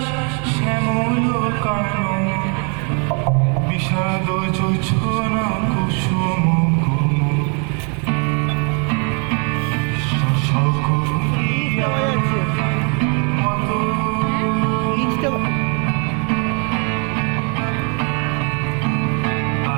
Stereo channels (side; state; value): left; quieter; 36.9 dB